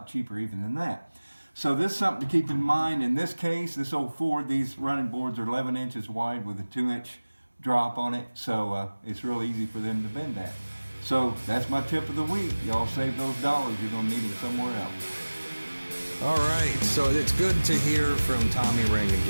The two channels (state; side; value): inverted; both; correlation -1.00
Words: cheaper even than that. So this is something to keep in mind. In this case, this old Ford, these running boards are 11 inches wide with a 2-inch drop on it, so it's real easy for them to bend that. So that's my tip of the week. Y'all save those dollars, you're going to need them somewhere else. All right, so it's good to hear from Tommy Ring